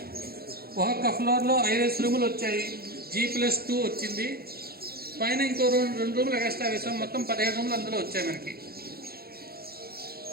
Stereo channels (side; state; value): left; late; 0.44 ms